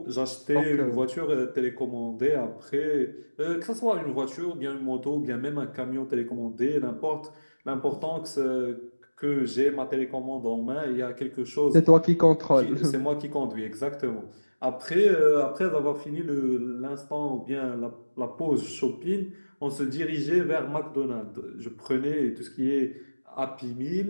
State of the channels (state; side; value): inverted; both; correlation -1.00